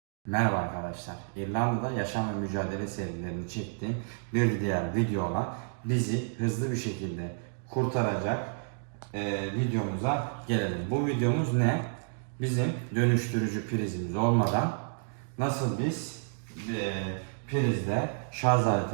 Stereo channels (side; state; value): left; silent; digital silence